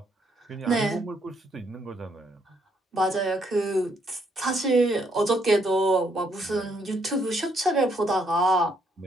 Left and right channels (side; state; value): both; normal; correlation 0.71